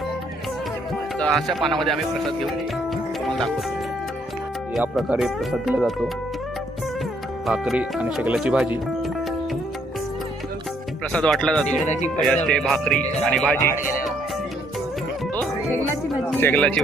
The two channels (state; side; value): normal; both; correlation 0.68